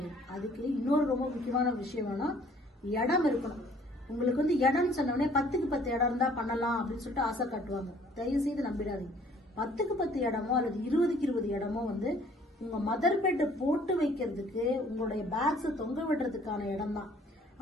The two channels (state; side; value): normal; both; correlation 0.57